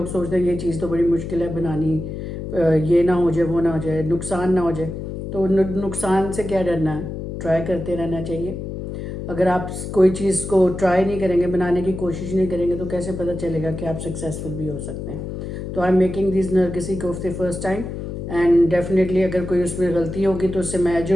सोचते हैं ये चीज़ तो बड़ी मुश्किल है बनानी, ये ना हो जाए वो ना हो जाए नुकसान ना हो जाए। तो नुकसान से क्या डरना है, ट्राई करते रहना चाहिए। अगर आप कोई चीज़ को ट्राई नहीं करेंगे, बनाने की कोशिश नहीं करेंगे, तो कैसे पता चलेगा कि आप सक्सेसफुल भी हो सकते हैं। तो आई एम मेकिंग दिस नरगिसी कोफ्ते फर्स्ट टाइम एंड डेफिनेटली अगर कोई उसमें गलती होगी तो उससे मैं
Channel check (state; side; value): noise; left; hum, 7 dB below the sound